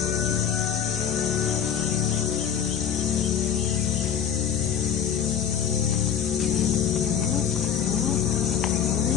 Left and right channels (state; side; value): quieter; right; 8.3 dB